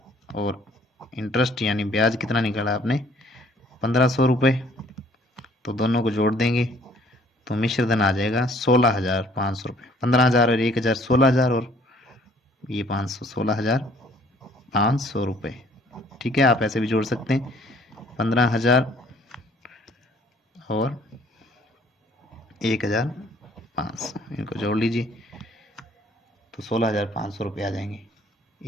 और इंटरेस्ट यानी ब्याज कितना निकाला आपने, 1500 रुपये। तो दोनों को जोड़ देंगे तो मिश्र धन आ जाएगा 16,500 रुपये। 15,000 और 1,000 16,000, और ये 500 16,500 रुपये। ठीक है, आप ऐसे भी जोड़ सकते हैं, 15,000 और 1,500, इनको जोड़ लीजिए तो 16,500 रुपये आ जाएंगे।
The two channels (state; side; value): normal; both; correlation 0.58